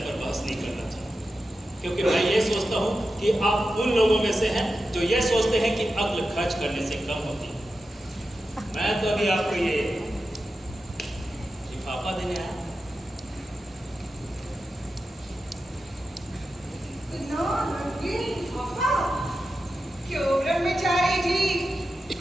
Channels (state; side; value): normal; both; correlation 0.91